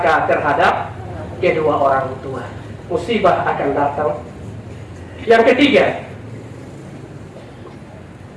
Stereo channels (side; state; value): both; identical; correlation 1.00